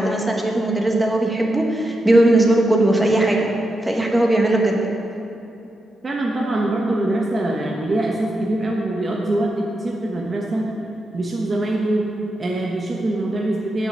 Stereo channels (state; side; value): normal; both; correlation 0.86